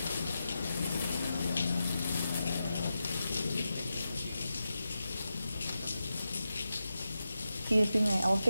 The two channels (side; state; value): both; inverted; correlation -0.90